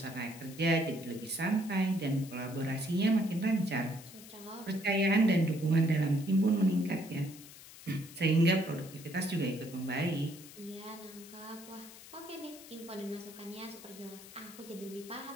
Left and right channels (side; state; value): left; noise; hiss, 17 dB below the sound